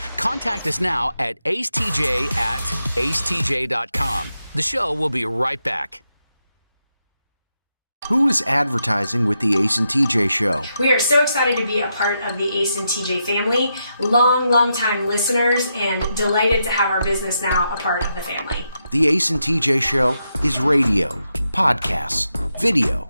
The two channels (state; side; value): inverted; both; correlation -0.84